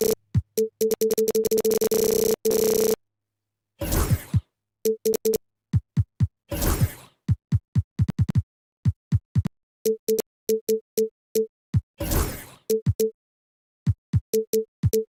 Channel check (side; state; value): both; identical; correlation 1.00